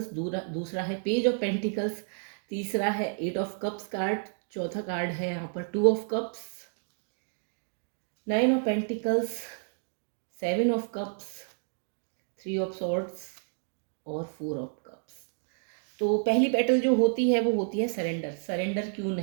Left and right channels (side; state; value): left; silent; 55 dB below the other